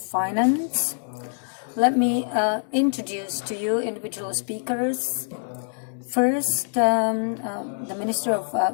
Let me introduce to you individual speakers. First, the Minister of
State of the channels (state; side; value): silent; right; digital silence